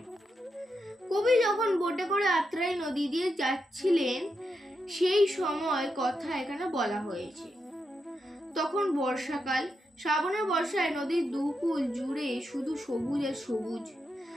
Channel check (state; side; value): normal; both; correlation 0.85